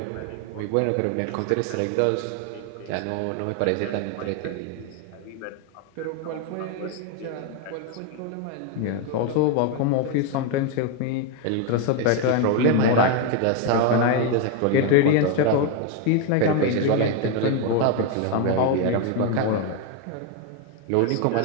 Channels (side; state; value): both; different; correlation 0.01